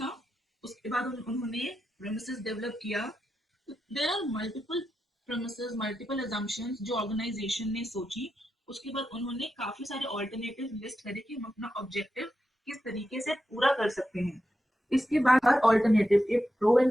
था। उसके बाद उन्होंने प्रेमिसेस डेवलप किया। There are multiple premises, multiple assumptions जो ऑर्गेनाइजेशन ने सोची। उसके बाद उन्होंने काफी सारे ऑल्टरनेटिव लिस्ट करे कि हम अपना ऑब्जेक्टिव किस तरीके से पूरा कर सकते हैं। इसके बाद हर ऑल्टरनेटिव के प्रो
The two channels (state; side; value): normal; both; correlation 0.88